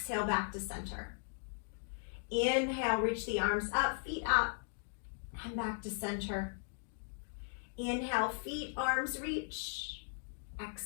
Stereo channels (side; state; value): right; silent; digital silence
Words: back to center. Inhale, reach the arms up, feet up, and back to center. Inhale, feet, arms reach.